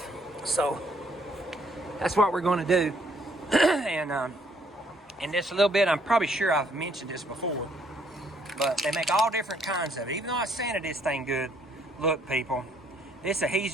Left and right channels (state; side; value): normal; both; correlation 0.67